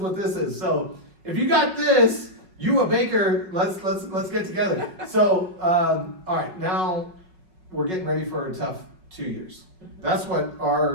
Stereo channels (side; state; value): left; late; 5.4 ms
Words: this is. So if you got this, you a baker, let's get together. So all right, now we're getting ready for a tough 2 years. That's what